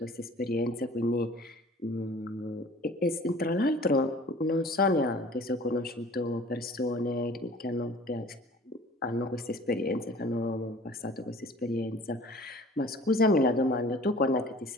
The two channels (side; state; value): both; normal; correlation 0.47